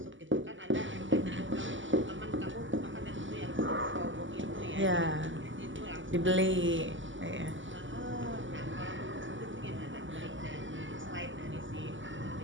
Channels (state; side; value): late; left; 0.55 ms